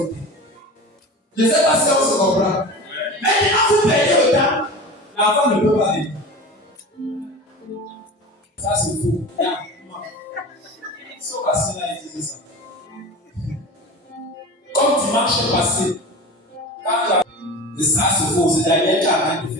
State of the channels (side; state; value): both; normal; correlation 0.33